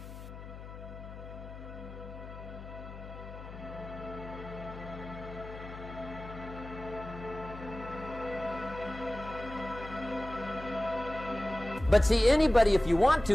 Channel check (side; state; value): left; noise; hum, 12 dB below the sound